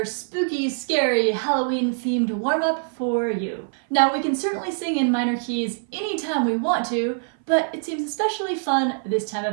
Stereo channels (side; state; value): left; silent; 57 dB below the other